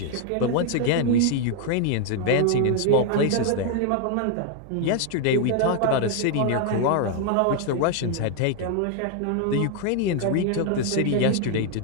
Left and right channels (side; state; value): both; different; correlation 0.00